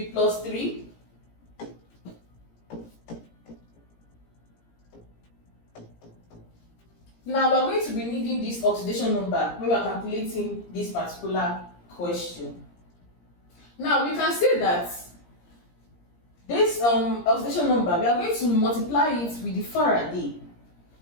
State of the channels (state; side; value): late; right; 17 ms